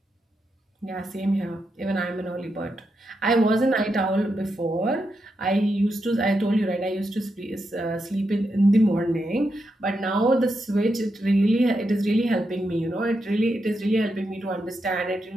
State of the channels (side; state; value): both; normal; correlation 0.84